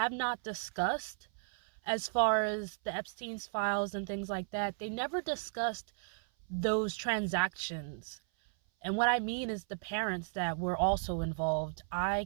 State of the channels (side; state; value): left; silent; 55 dB below the other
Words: not discussed as far as the Epstein's files and things like that, they never discussed those transactions. And what I mean is the parents that were also involved.